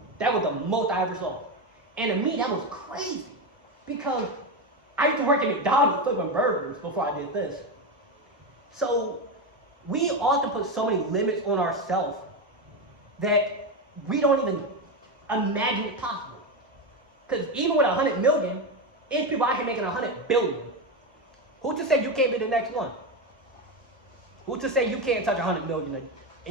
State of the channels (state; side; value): normal; both; correlation 0.13